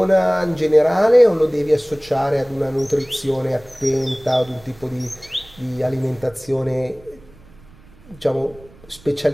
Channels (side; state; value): right; noise; rumble, 25 dB below the sound